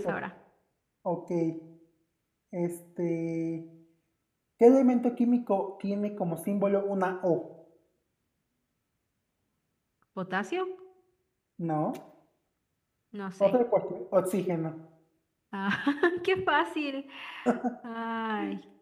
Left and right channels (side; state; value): both; identical; correlation 1.00